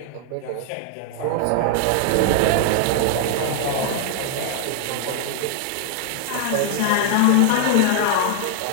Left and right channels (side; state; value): both; different; correlation 0.00